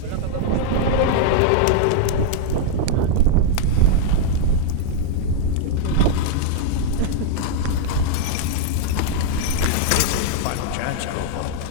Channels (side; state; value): both; different; correlation -0.01